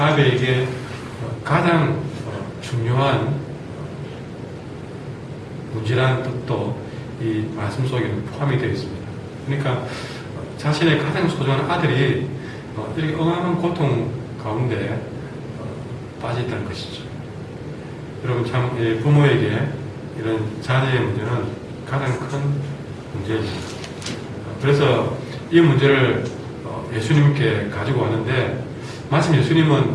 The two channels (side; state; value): both; identical; correlation 1.00